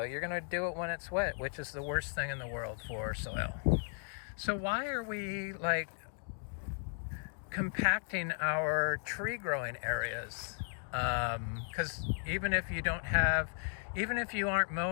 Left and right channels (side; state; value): right; silent; 54 dB below the other